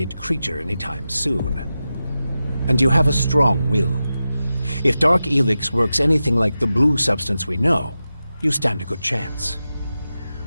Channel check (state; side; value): inverted; both; correlation -0.92